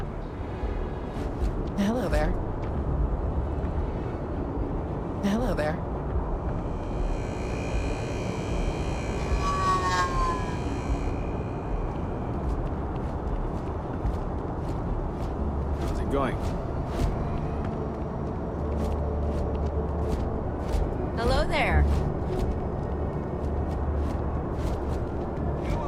Hello there. Hello there. How's it going? Hello there. You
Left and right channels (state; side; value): identical; both; correlation 1.00